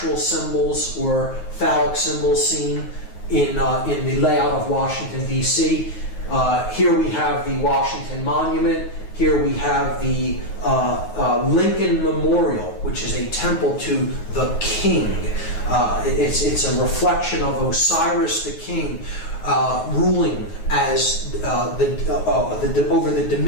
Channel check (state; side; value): late; right; 9.4 ms